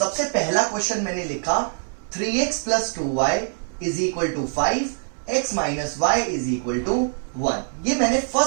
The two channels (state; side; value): silent; left; 63 dB below the other